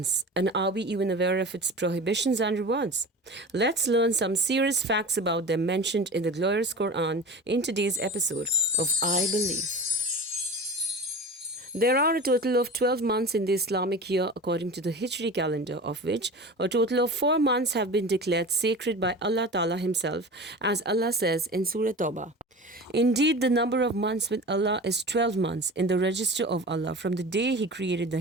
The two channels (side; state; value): both; normal; correlation 0.34